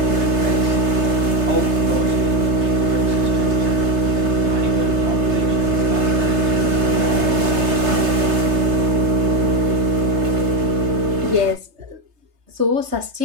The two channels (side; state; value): left; late; 3.3 ms